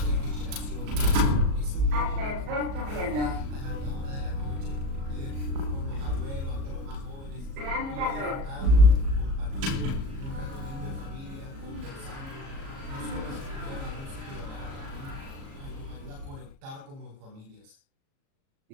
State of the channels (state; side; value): late; left; 37 ms